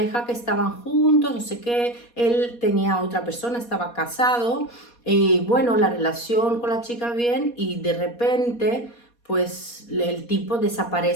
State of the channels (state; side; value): late; right; 4.2 ms